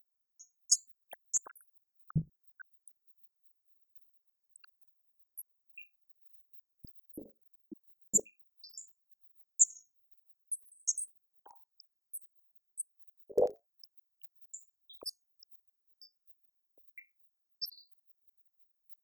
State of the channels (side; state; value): left; late; 0.16 ms